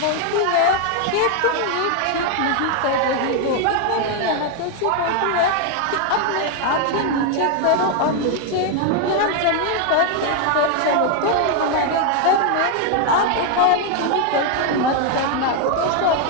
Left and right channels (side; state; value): both; different; correlation 0.01